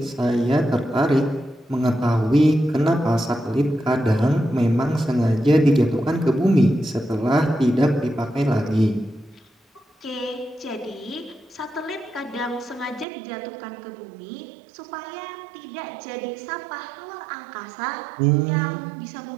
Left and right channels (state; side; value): drops out; left; at 13.1 s